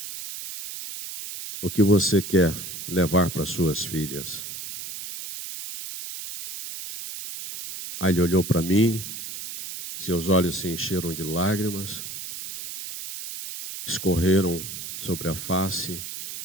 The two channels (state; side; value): noise; right; hiss, 9 dB below the sound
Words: O que você quer levar para suas filhas? Aí ele olhou para mim, seus olhos se encheram de lágrimas, escorreram sobre a face,